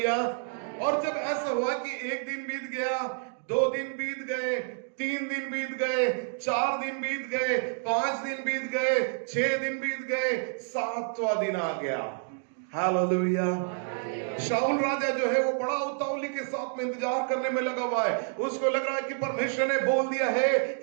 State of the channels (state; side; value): silent; left; 59 dB below the other